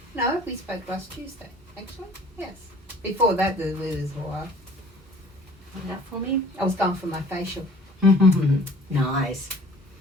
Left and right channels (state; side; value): normal; both; correlation 0.51